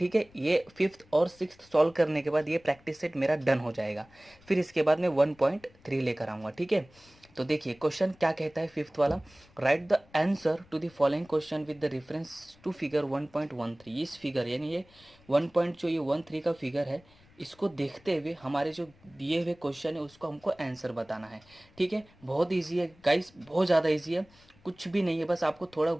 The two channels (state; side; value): noise; left; rumble, 28 dB below the sound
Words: है, ये 5th और 6th सॉल्व करने के बाद ये प्रैक्टिस सेट मेरा डन हो जाएगा। फिर इसके बाद मैं 1.3 लेकर आऊँगा। ठीक है, तो देखिए क्वेश्चन क्या कहता है 5th वाला। Write the answer to the following question with the reference to figure 1.13। इस फिगर यानी ये 1.13 का फिगर है, इसको देखते हुए हमारे जो दिए हुए क्वेश्चन है उसको हमको आंसर बताना है। ठीक है, बहुत ईजी है गाइस, बहुत ज़्यादा ईजी है, कुछ भी नहीं है, बस आपको थोड़ा